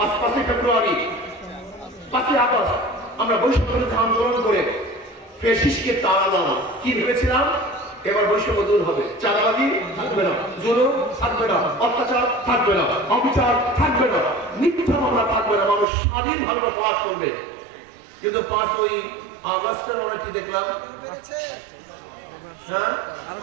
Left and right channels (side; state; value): left; drops out; at 15.9 s